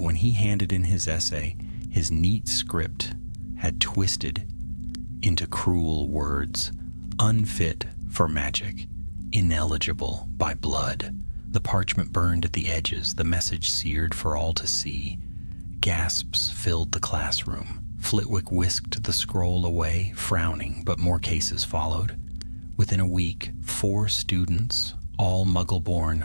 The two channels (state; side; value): inverted; both; correlation -1.00